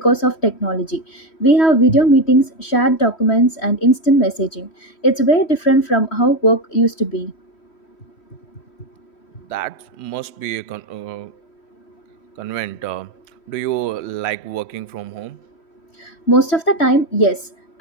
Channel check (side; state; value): right; late; 3.1 ms